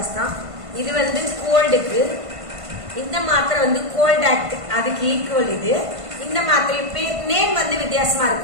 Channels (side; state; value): left; late; 1.5 ms